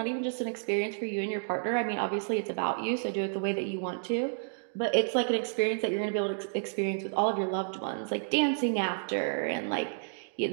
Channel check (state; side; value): silent; left; digital silence